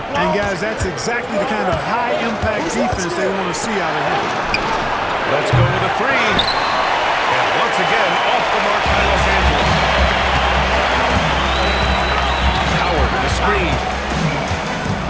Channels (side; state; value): both; identical; correlation 1.00